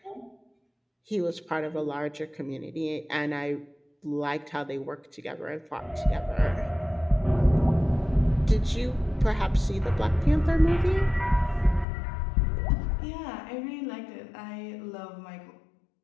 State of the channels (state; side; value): drops out; right; at 11.9 s